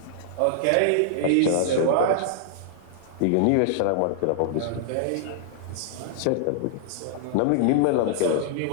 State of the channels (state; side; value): different; both; correlation -0.02